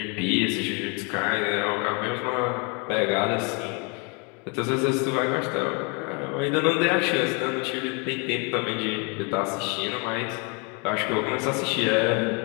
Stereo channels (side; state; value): right; quieter; 33.1 dB